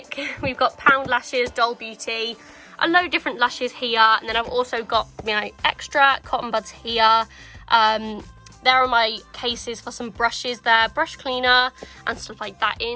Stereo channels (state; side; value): identical; both; correlation 1.00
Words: We've got Pound Lashes, Doll Beauty. A load of different lashes here, and then I've also got my extra cotton buds here. There are my cases for some brushes there, brush cleaner and stuff like that